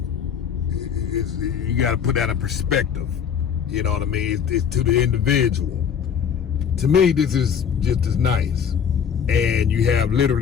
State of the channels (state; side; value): quieter; right; 7.6 dB